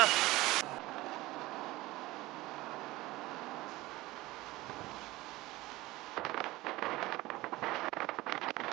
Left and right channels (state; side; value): quieter; left; 19.0 dB